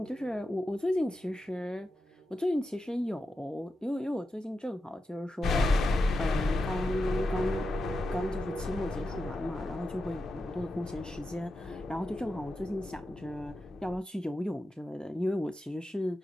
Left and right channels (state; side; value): normal; both; correlation 0.89